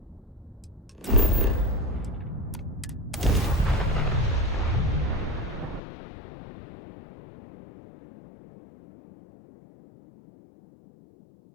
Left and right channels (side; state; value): right; drops out; at 5.8 s